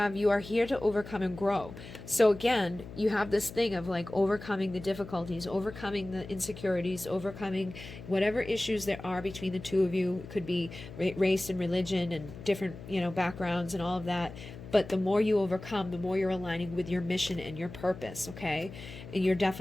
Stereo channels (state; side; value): noise; left; hum, 14 dB below the sound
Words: you are here to overcome and grow. So again, you have this thing of like overcoming the difficulties, overcoming the insecurities, overcoming whatever issues there are between the two of you. It could be race and religion and different, backgrounds and all of that. But the more you overcome, the more you're aligning with your mission and your purpose, okay? And you're